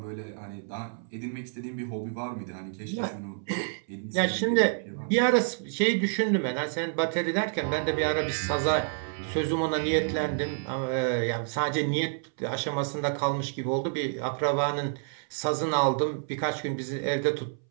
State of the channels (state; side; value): silent; left; 59 dB below the other